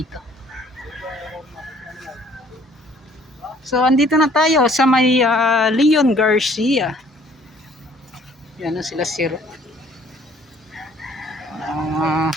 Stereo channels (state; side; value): normal; both; correlation 0.58